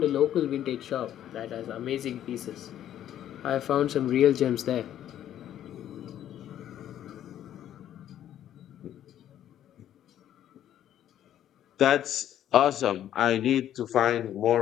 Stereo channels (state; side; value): quieter; right; 11.2 dB